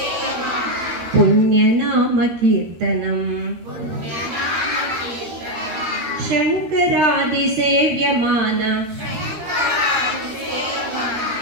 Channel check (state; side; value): late; left; 13 ms